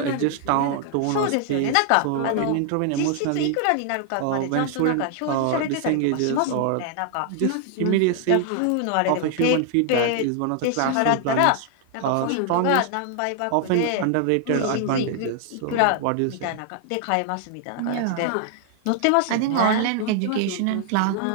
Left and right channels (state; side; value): different; both; correlation 0.00